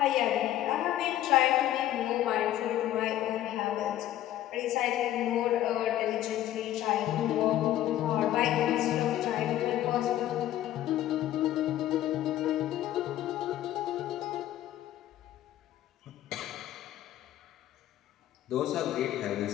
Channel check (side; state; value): right; quieter; 13.0 dB